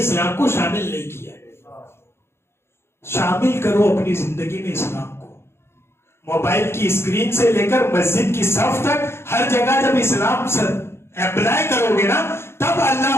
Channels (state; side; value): late; right; 0.12 ms